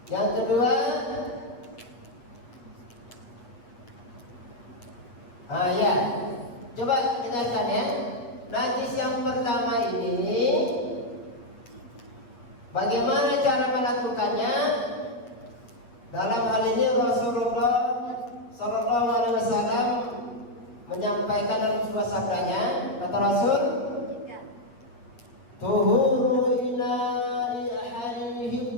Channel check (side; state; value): right; late; 8.4 ms